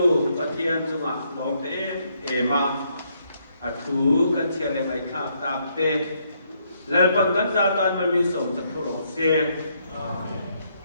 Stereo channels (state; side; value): inverted; both; correlation -0.73